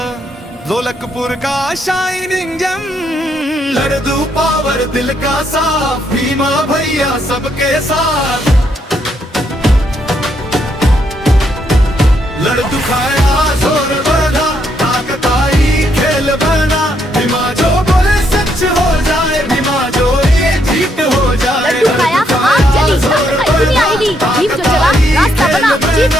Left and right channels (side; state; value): both; normal; correlation 0.75